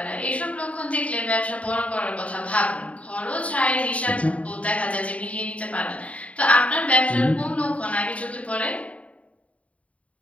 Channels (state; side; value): late; right; 0.066 ms